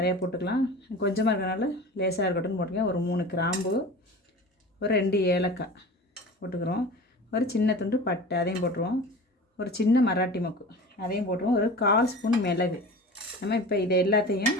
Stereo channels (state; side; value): normal; both; correlation 0.36